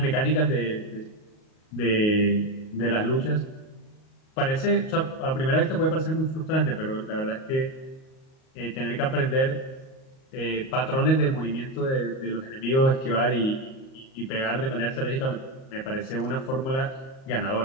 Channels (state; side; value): late; right; 38 ms